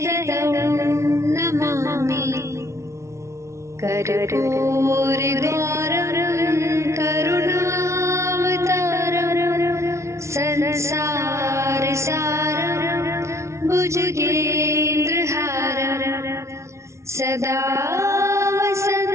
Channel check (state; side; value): late; left; 0.13 ms